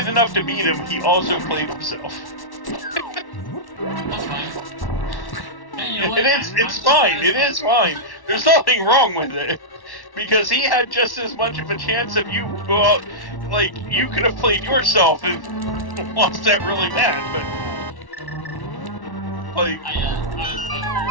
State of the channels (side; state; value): right; late; 1.1 ms